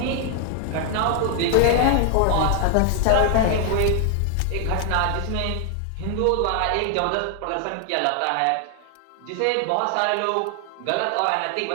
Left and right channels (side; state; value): both; different; correlation 0.00